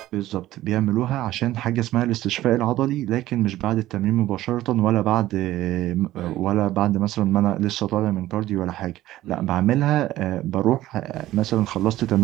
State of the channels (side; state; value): left; quieter; 15.2 dB